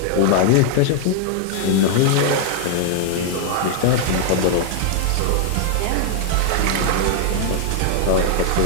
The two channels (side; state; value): both; different; correlation 0.00